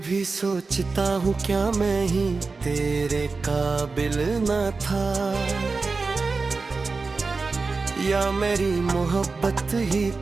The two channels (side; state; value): left; quieter; 4.1 dB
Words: सोचता हूँ क्या मैं ही तेरे काबिल न था, या मेरी मोहब्बत ही